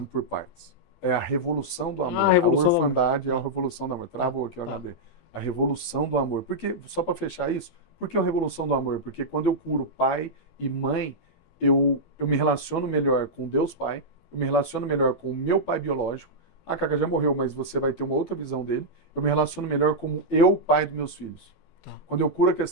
por partes. É a Revolução do Amor. A orfandade é a Revolução do Amor. Travou aqui o HD. A Revolução do Amor. Porque, só para fechar isso, por que a Revolução do Amor? Porque quando eu curo pai e mãe, eu me relaciono melhor com Deus Pai, eu me relaciono melhor com o meu pai biológico, Ah, Cacá já morreu, mas você vai ter uma outra visão dele. Eu me relaciono melhor como eu, pai dos meus filhos. Tá. Quando eu curo a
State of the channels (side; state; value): right; late; 12 ms